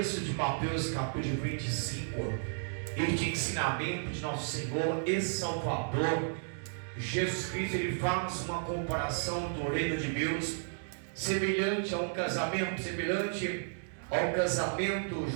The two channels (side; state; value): left; silent; digital silence